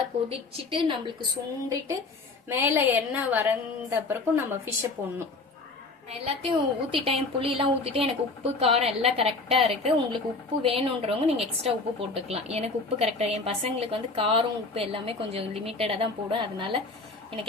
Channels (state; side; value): quieter; right; 3.6 dB